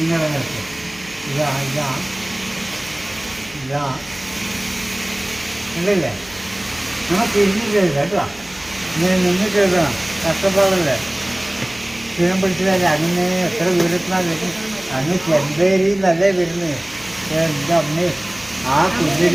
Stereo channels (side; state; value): right; noise; hum, 24 dB below the sound